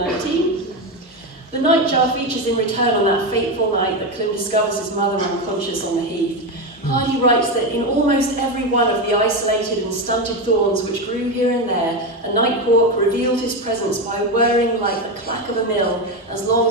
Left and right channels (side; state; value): both; normal; correlation 0.14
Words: The nightjar features in Return on that fateful night that Clym discovers his mother unconscious on the heath. Hardy writes that in almost every one of the isolated and stunted thorns which grew here and there, a nighthawk revealed his presence by whirring like the clack of a mill as long